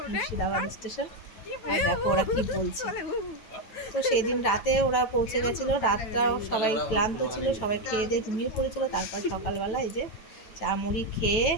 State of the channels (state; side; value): late; right; 9.2 ms